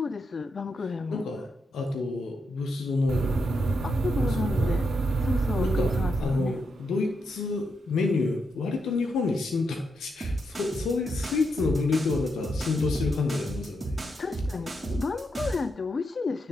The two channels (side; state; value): both; normal; correlation 0.83